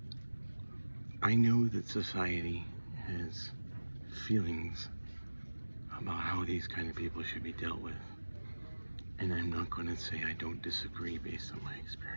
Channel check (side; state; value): both; inverted; correlation -1.00